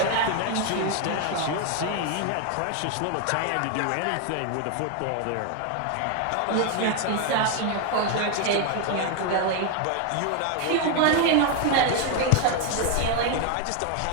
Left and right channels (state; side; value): different; both; correlation 0.01